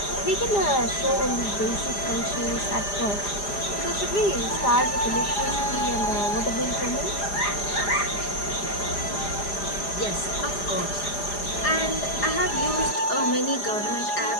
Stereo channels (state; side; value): late; right; 4.9 ms